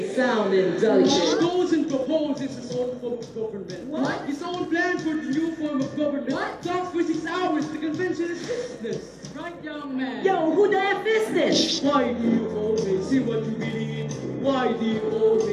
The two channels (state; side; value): identical; both; correlation 1.00